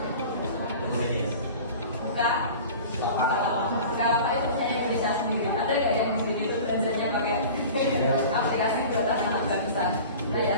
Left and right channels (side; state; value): both; inverted; correlation -0.39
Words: Buka apa itu punya Indonesia sendiri. Ada nggak yang di sini tuh belanjanya pakai aplikasi buat anak bangsa? Banyak